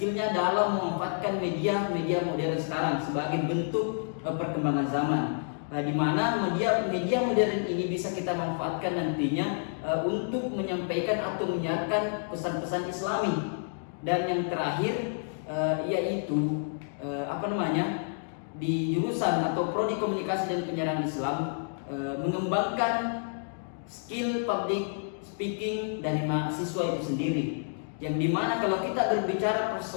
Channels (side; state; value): right; silent; digital silence